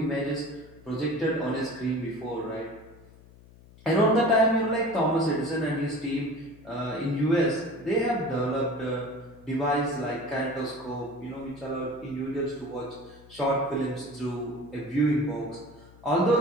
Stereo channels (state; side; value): noise; left; hum, 23 dB below the sound